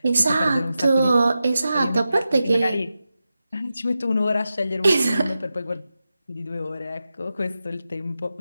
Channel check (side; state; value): both; inverted; correlation -0.92